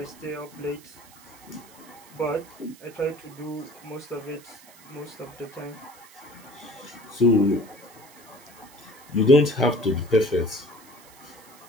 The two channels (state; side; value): noise; right; hiss, 23 dB below the sound